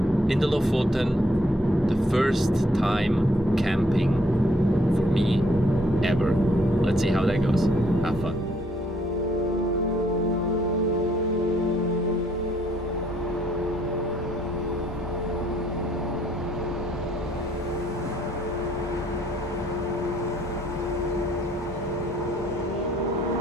in the Lofoten, the first time camping for me ever. Let's see how that goes. Have fun.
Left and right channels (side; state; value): both; normal; correlation 0.67